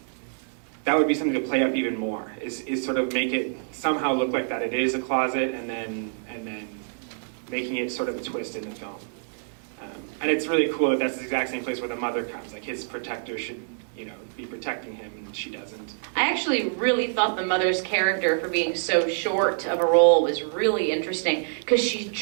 that would be something to play up even more, is sort of make it somehow look like that it is a closet, and then making it sort of a twist in the film. And it's really cool that that's the exact same place where the mother comes. Like his protector should, be protecting him, and she doesn't. I actually really thought the mother's character, for being so short of a role, was really interesting because she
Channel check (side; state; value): left; silent; digital silence